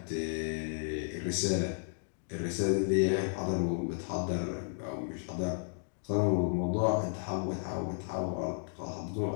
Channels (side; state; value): right; silent; digital silence